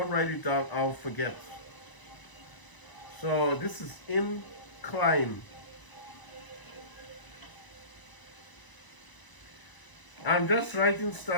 write it down, I'll forget. So this is Incline. I'm just writing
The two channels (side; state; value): right; late; 1.0 ms